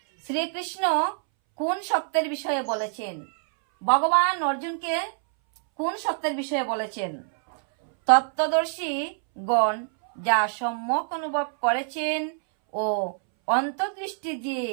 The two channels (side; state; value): left; silent; 61 dB below the other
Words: শ্রীকৃষ্ণ কোন সত্যের বিষয়ে বলেছেন? ভগবান অর্জুনকে কোন সত্যের বিষয়ে বলেছেন? তত্ত্বদর্শী গণ যা সম্যক অনুভব করেছেন ও অন্তর্দৃষ্টি দিয়ে